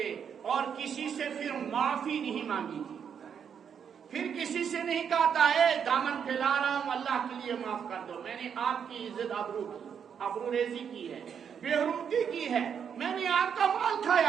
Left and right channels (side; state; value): left; quieter; 7.6 dB